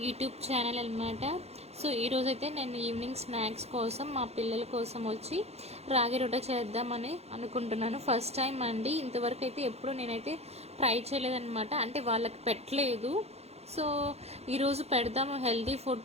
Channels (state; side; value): late; left; 0.31 ms